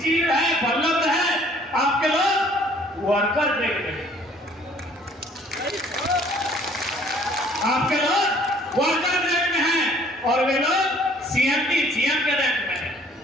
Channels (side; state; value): both; normal; correlation 0.58